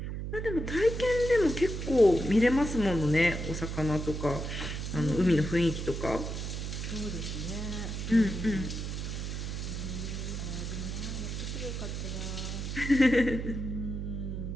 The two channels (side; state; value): right; noise; hum, 4 dB below the sound